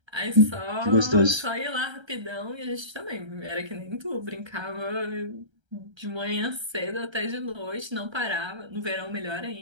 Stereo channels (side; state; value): left; late; 1.3 ms